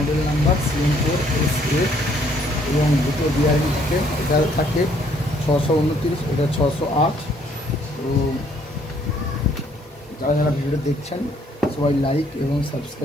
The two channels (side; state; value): both; normal; correlation 0.65